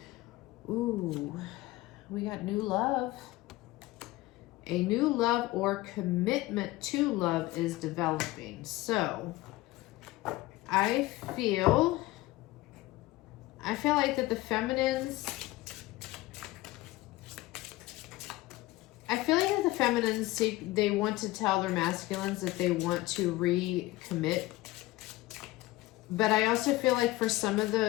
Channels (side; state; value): right; quieter; 18.5 dB